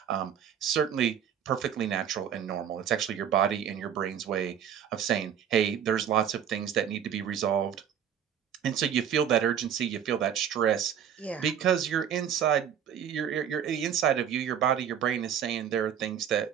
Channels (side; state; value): left; quieter; 8.8 dB